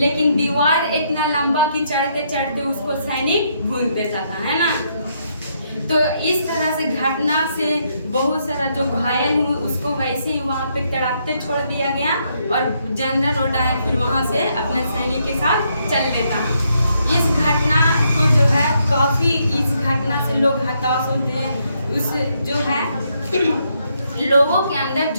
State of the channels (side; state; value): both; inverted; correlation -0.75